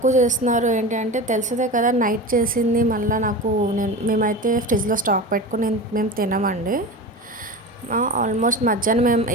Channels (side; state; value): both; normal; correlation 0.28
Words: చేస్తున్నారు ఏంటి అంటే, తెలిసిందే కదా నైట్ చేసింది మళ్ళీ మేమైతే ఫ్రిడ్జ్లో స్టాక్ పెట్టుకుని మేము తినమండి. ఆల్మోస్ట్ మధ్యాహ్నం మేము